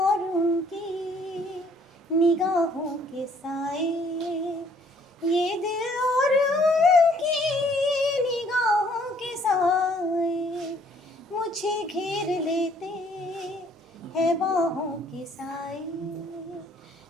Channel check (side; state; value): both; normal; correlation 0.61